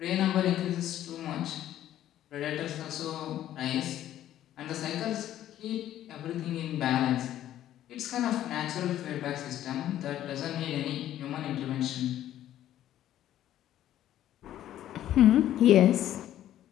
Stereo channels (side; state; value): right; quieter; 12.3 dB